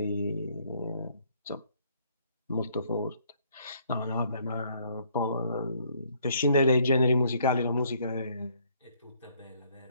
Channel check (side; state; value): both; inverted; correlation -0.65